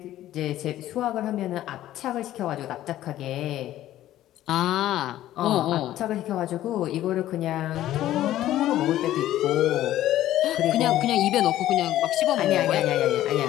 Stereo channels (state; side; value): quieter; right; 13.6 dB